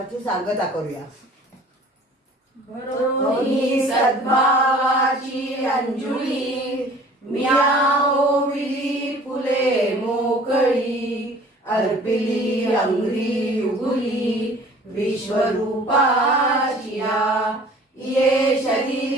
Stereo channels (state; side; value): normal; both; correlation 0.49